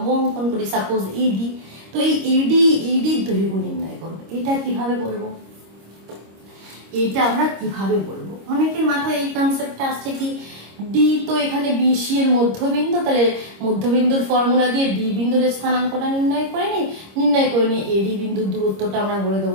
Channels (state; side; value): late; left; 26 ms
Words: অঙ্কন করি, সাপোজ এডি, তো এই এডির দৈর্ঘ্য নির্ণয় করো। এটা কিভাবে বলবো, এটা আমরা কিভাবে বলবো? অনেকের মাথায় এই কনসেপ্টটা আসছে কি, ডি তো এখানে বিসি এর মধ্যবিন্দু, তাহলে মধ্যবিন্দুর ফর্মুলা দিয়ে ডি বিন্দুর স্থানাঙ্কটা নির্ণয় করে নিই এডি বিন্দুর দূরত্বটা আমরা বলে